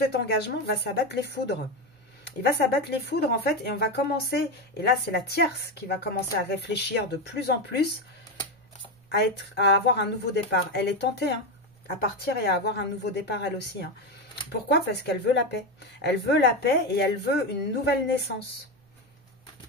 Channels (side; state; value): both; normal; correlation 0.13